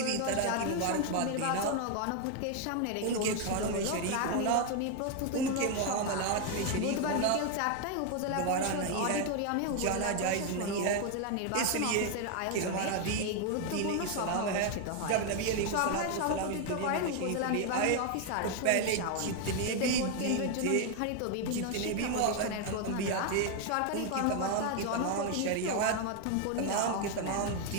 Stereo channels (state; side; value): different; both; correlation 0.01